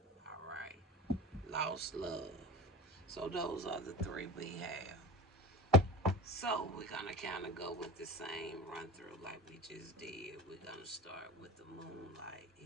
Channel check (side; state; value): both; normal; correlation 0.34